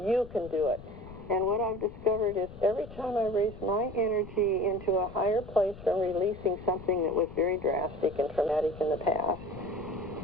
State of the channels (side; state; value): left; noise; rumble, 15 dB below the sound